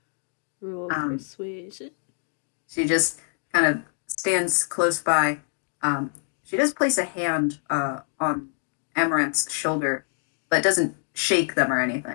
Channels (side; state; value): right; silent; 61 dB below the other